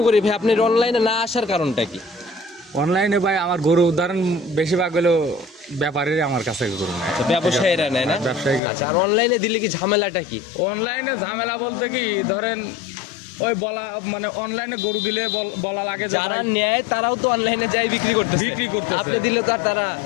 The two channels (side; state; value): right; drops out; at 8.6 s